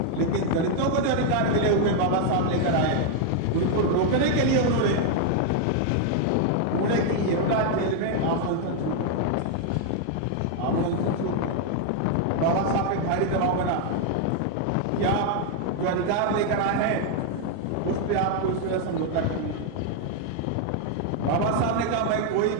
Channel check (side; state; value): both; different; correlation 0.00